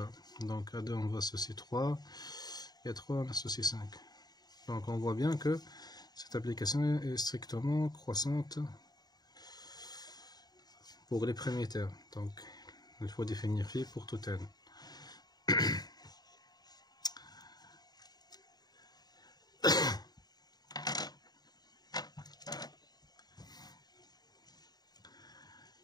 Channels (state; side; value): late; right; 0.19 ms